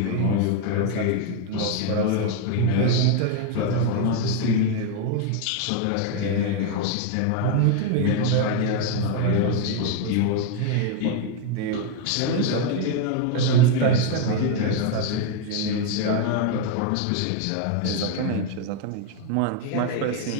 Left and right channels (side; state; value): both; different; correlation 0.01